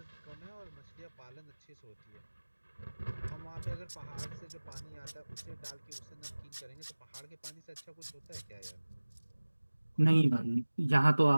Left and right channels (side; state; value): both; inverted; correlation -1.00